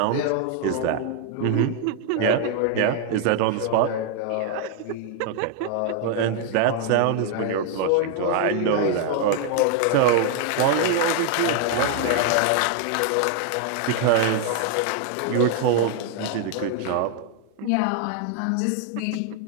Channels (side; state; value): both; different; correlation 0.00